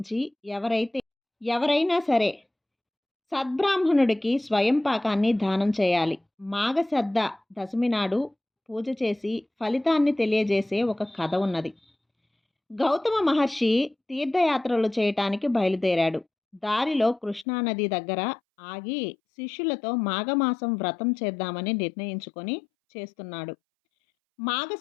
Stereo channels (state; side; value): drops out; right; at 17.4 s